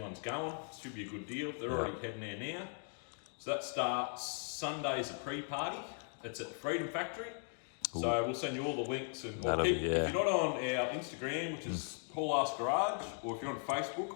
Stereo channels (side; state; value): right; silent; 52 dB below the other